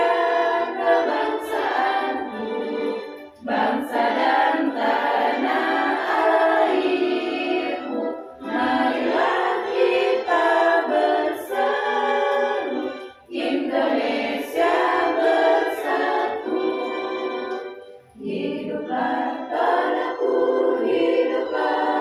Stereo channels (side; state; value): both; identical; correlation 1.00